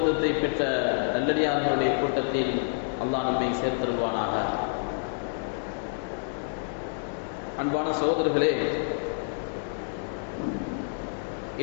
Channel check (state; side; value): silent; right; digital silence